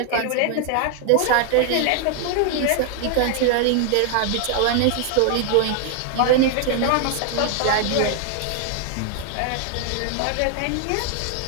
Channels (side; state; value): both; different; correlation 0.00